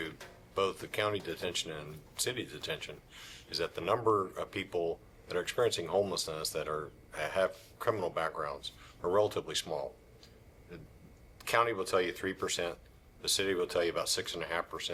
both the county detention and city detention is that the number of people that are experiencing homelessness that have criminal backgrounds are relatively small. The county will tell you 3%. The city will tell you about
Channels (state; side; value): identical; both; correlation 1.00